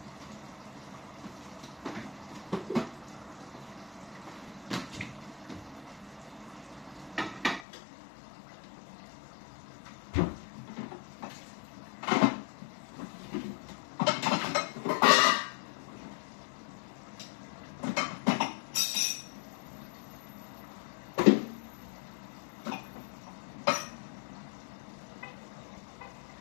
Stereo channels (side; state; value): right; drops out; at 7.7 s